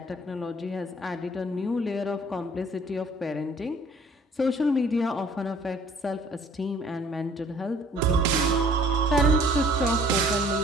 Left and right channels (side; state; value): both; normal; correlation 0.55